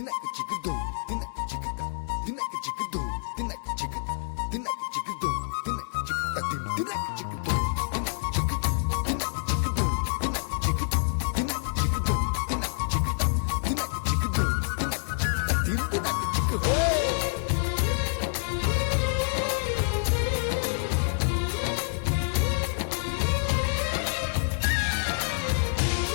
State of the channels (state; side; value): silent; right; 60 dB below the other